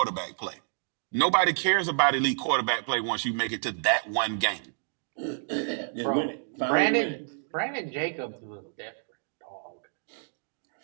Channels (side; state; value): left; silent; digital silence